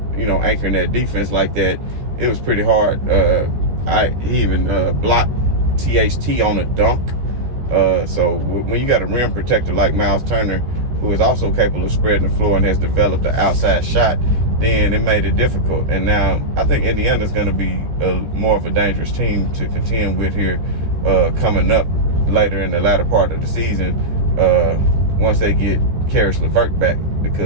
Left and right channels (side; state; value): left; late; 14 ms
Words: anchoring that defense like that, it was pretty hard. He even blocked THT on a dunk. So when you got a rim protector like Miles Turner, who is also capable of spreading the floor and has developed an outside shot, then it made it difficult. And now I think Indiana's going to be more of a dangerous team to contend with here coming up later in the latter part of the season once they get Caris LeVert back.